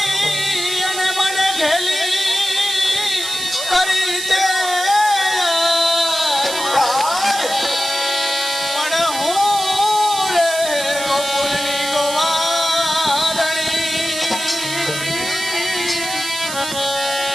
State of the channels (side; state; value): right; noise; hiss, 7 dB below the sound